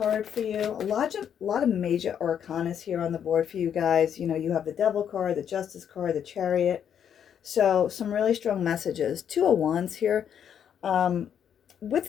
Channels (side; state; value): right; quieter; 8.7 dB